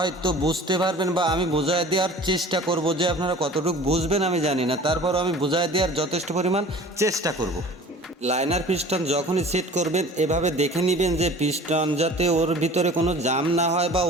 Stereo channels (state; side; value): normal; both; correlation 0.44